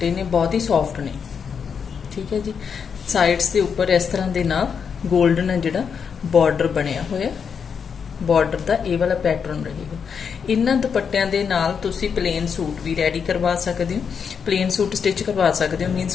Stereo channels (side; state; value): right; quieter; 6.6 dB